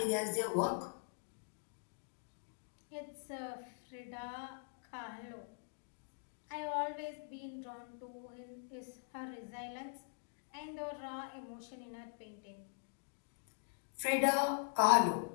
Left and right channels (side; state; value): right; silent; digital silence